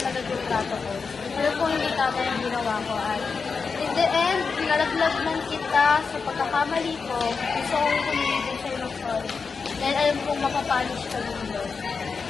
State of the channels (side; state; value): right; quieter; 5.1 dB